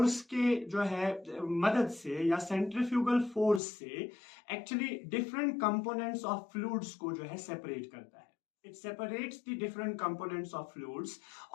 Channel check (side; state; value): right; drops out; at 3.6 s